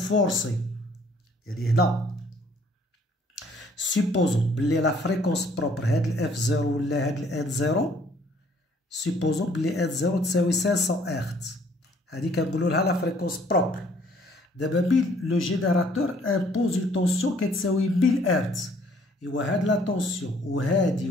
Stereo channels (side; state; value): both; normal; correlation 0.61